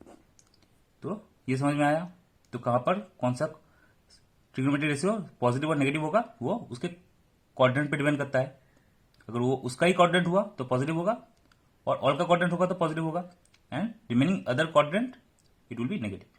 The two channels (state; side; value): identical; both; correlation 1.00